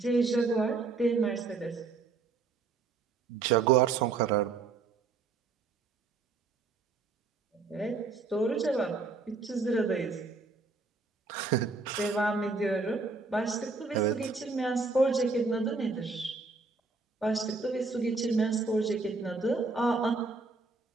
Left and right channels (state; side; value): quieter; left; 4.1 dB